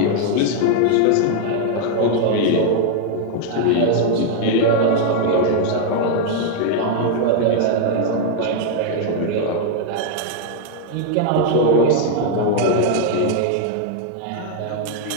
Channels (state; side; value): different; both; correlation 0.00